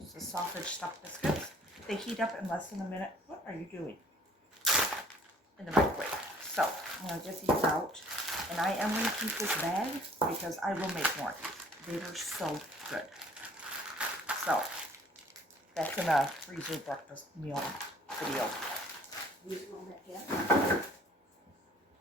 the sausage stuffed biscuits. They heat up in less than a minute. What are you doing? In the microwave. So I'm going to get these out. And I am going to keep this bag because I will make more. They were so good. So that's in a freezer breakfast meal video. Use a little bit, yeah.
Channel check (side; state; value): both; normal; correlation 0.55